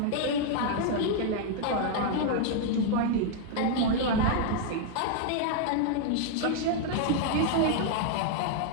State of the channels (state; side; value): different; both; correlation -0.01